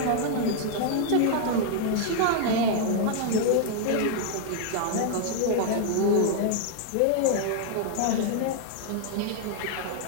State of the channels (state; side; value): different; both; correlation 0.00